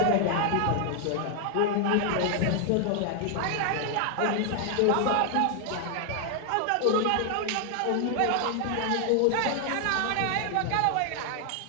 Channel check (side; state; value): both; different; correlation 0.00